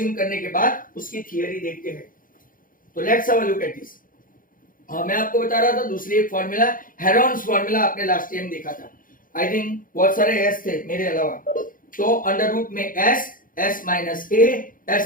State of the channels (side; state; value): right; late; 0.40 ms